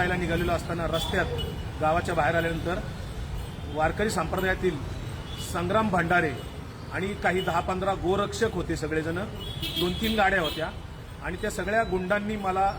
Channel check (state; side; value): identical; both; correlation 1.00